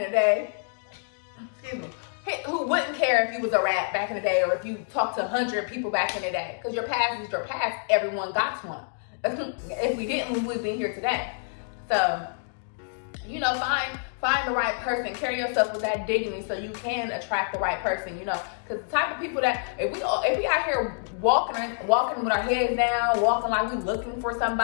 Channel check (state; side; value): silent; right; digital silence